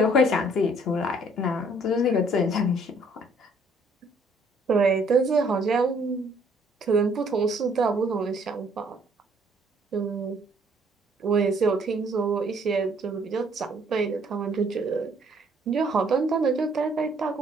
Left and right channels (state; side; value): normal; both; correlation 0.63